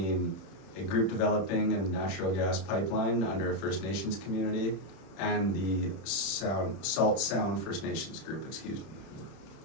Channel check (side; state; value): right; late; 31 ms